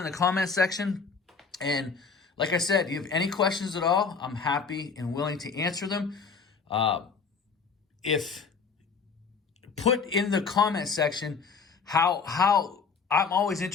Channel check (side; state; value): right; quieter; 5.3 dB